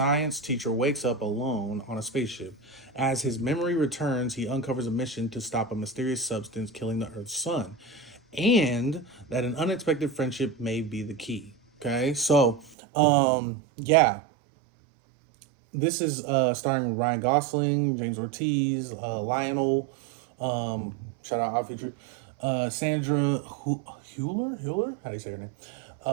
teacher wakes up alone on a spaceship. As his memory returns, he uncovers a mission to stop a mysterious substance killing the Earth's sun, and that an unexpected friendship may be the key. Okay, so yeah, this is starring Ryan Gosling, James Ortiz, Lionel, shout out Odd Future, Sandra Hewler, how do you say her name?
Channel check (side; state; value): left; drops out; at 12.8 s